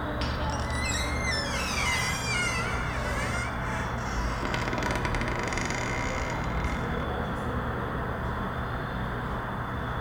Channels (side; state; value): both; identical; correlation 1.00